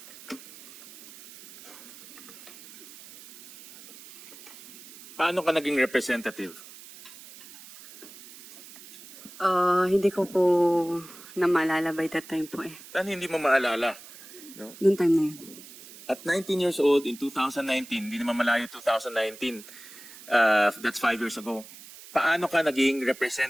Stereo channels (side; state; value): right; noise; hiss, 18 dB below the sound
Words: Paano ka naging representative? Hindi ko po na maalala by that time po eh. Paano hindi mo maalala? No? Noong time na yun. At 19 years old in 2019, hindi naman malayo 2019, that's 5 years ago. Paano ka naging